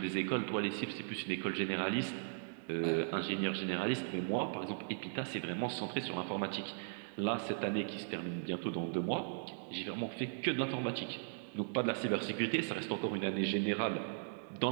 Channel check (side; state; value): left; silent; digital silence